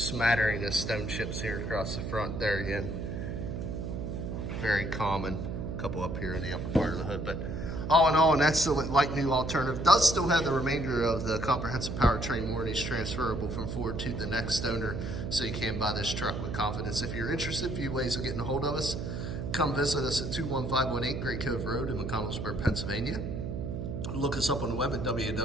of stone chips here across the front there again. Very common. A couple up here in the upper part of the hood. But all in all, and that's the like new alternative. Does still have the remainder of the comprehensive powertrain warranties transferable from Ford to the next owner, so you can buy this truck with confidence. If you're interested, a few ways of getting a hold of us. Come visit us at 21518 Great Cove Road in McConnellsburg, Pennsylvania. Look us up on the web at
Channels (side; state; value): right; noise; hum, 4 dB below the sound